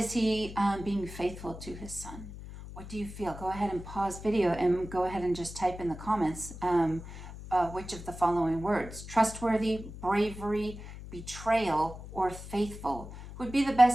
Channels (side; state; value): left; noise; hum, 12 dB below the sound